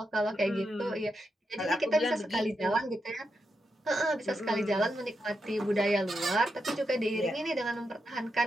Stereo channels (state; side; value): normal; both; correlation 0.85